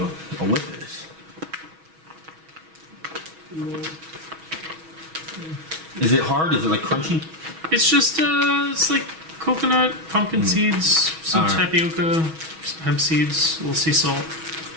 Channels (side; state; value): left; late; 6.2 ms